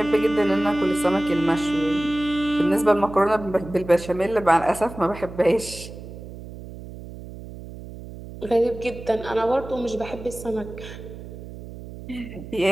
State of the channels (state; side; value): noise; right; hum, 13 dB below the sound